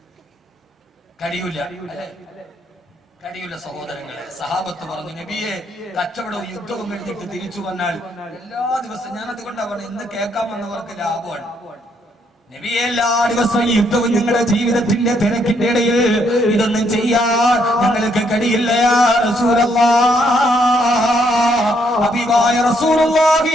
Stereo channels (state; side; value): normal; both; correlation 0.72